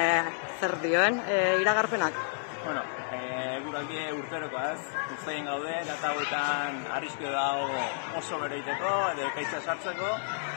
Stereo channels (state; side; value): silent; right; digital silence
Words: zer dioen iragarpenak? Bueno, eguraldie urterokoaz, ustein gaude, data hauetan arrisku dago oso beroiteko, edo ekaitza sartzeko,